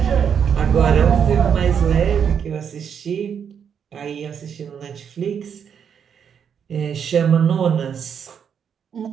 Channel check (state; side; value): quieter; left; 7.6 dB